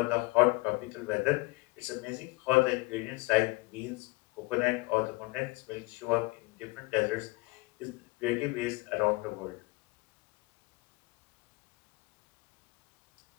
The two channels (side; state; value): right; quieter; 24.0 dB